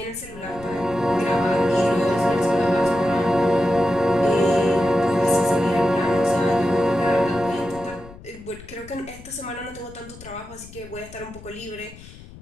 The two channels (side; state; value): left; noise; rumble, 18 dB below the sound